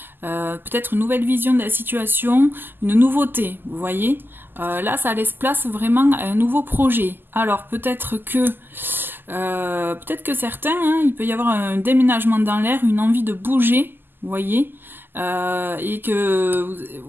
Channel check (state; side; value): late; left; 0.094 ms